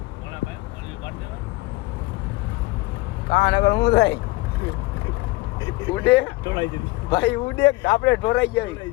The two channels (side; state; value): right; quieter; 21.7 dB